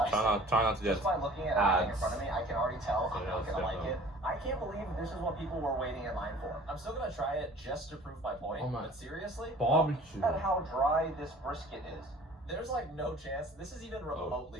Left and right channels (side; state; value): both; normal; correlation 0.47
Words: Try not to get just by looking at everything in front of me, I can already tell I'm not gonna like it. I can't believe this is what people were waiting in line for. I'm still gonna try it just to prove my point. But seriously, barbecue. Look at how dry this brisket is. There's like no chance this is even